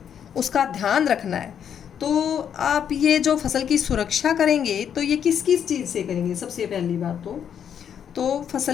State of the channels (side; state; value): right; quieter; 8.5 dB